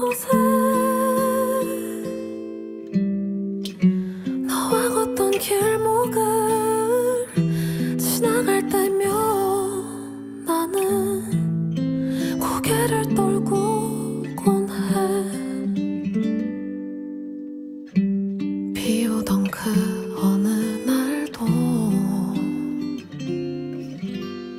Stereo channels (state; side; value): identical; both; correlation 1.00